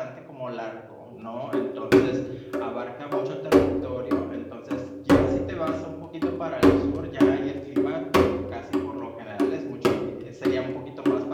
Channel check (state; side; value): identical; both; correlation 1.00